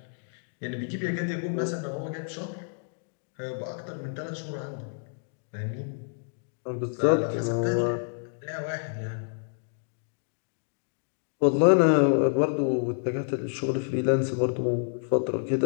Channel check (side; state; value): right; silent; digital silence